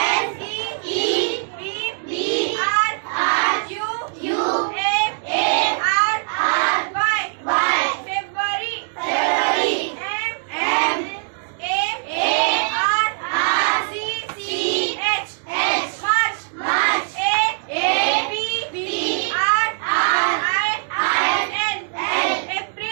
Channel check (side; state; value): left; silent; digital silence